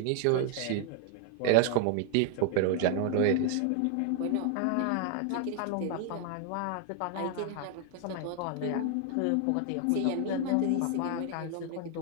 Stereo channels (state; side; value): different; both; correlation 0.00